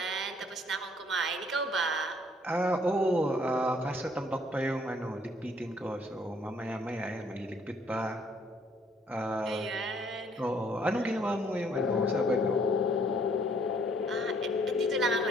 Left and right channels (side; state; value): both; normal; correlation 0.63